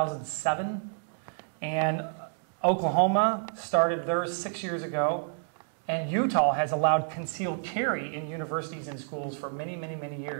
And Oklahoma started theirs 6 years ago. And Utah has allowed concealed carry in universities and schools for many, many, many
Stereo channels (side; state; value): left; silent; digital silence